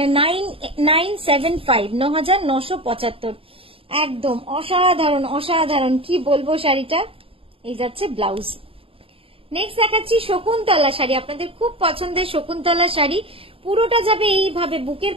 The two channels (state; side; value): late; left; 0.27 ms